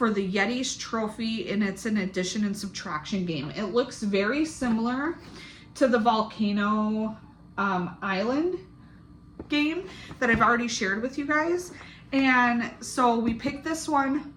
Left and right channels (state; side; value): identical; both; correlation 1.00